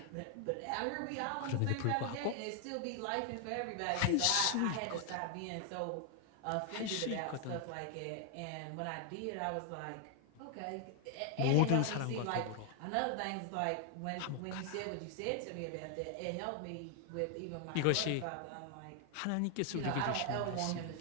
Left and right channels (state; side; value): different; both; correlation 0.00